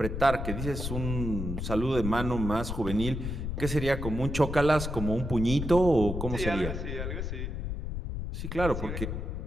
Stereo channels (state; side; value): noise; left; rumble, 4 dB below the sound